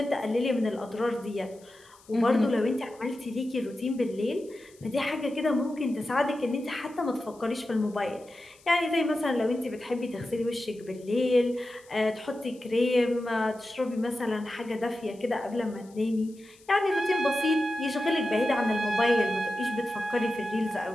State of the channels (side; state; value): left; noise; hiss, 27 dB below the sound